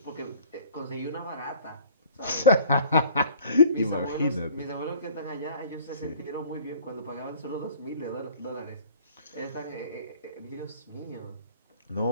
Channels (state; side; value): inverted; both; correlation -0.49